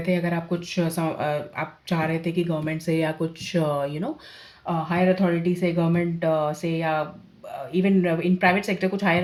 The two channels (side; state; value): both; identical; correlation 1.00